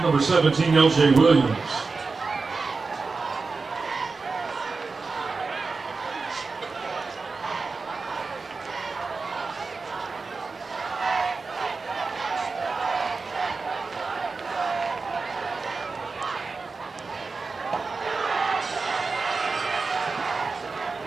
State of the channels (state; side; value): quieter; left; 4.2 dB